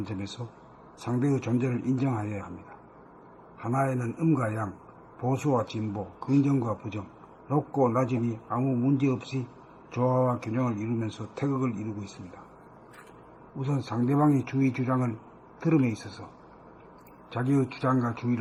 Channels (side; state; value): both; identical; correlation 1.00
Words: 점에서 상대의 존재를 인정하여야 합니다. 하나에는 음과 양, 보수와 진보, 긍정과 부정, 높고 낮음이 아무 문제없이 조화와 균형을 이루면서 태극을 이루고 있습니다. 우선 상대방의 주의 주장을 들음에 있어서 자기의 주장과